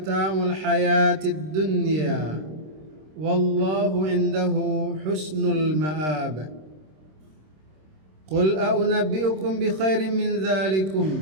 الحياة الدنيا والله عنده حسن المآب. قل أنبئكم بخير من ذلكم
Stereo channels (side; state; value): left; late; 26 ms